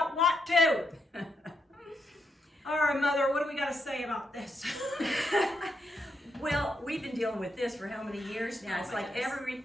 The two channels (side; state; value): both; normal; correlation 0.80